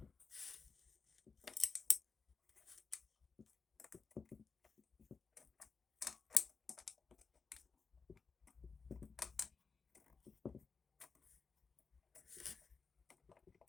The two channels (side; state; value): right; quieter; 5.0 dB